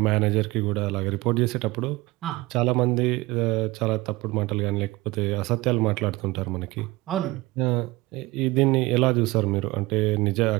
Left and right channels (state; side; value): quieter; left; 20.8 dB